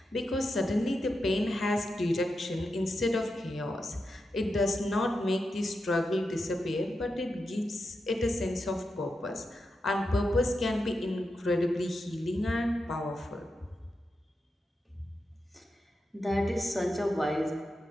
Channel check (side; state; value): both; normal; correlation 0.88